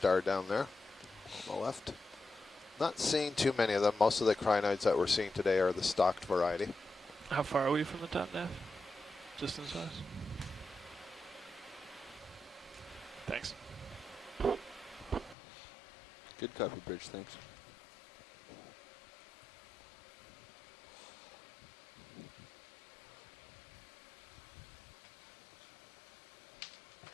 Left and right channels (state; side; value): drops out; right; at 15.4 s